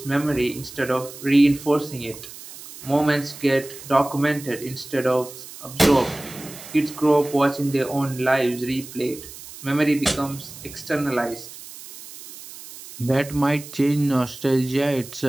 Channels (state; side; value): noise; right; hiss, 15 dB below the sound